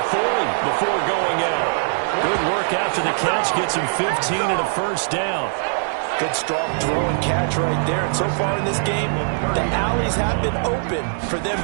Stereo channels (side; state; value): left; silent; digital silence